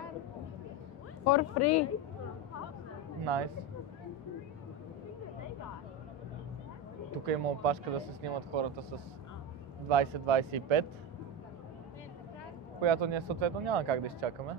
For free. Nice. Тук има опашка да се снимат хората с 20-25, която ние съответно няма как да изчакаме,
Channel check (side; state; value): both; normal; correlation 0.17